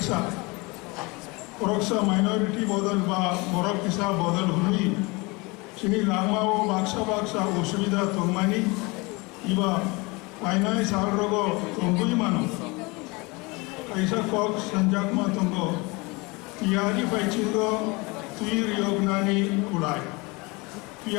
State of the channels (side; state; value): right; quieter; 26.0 dB